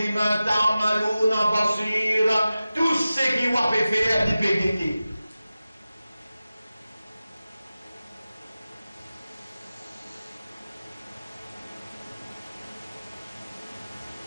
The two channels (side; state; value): both; inverted; correlation -0.95